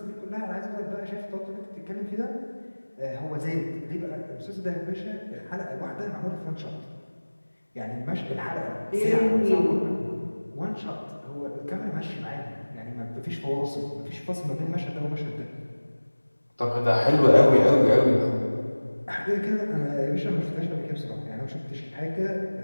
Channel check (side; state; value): both; inverted; correlation -1.00